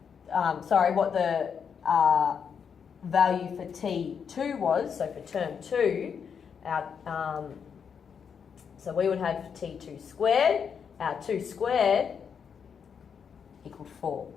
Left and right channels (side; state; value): right; quieter; 6.9 dB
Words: what the value for T2 was, so for term 2, so we would have T2 squared, our 2 squared equaled 4.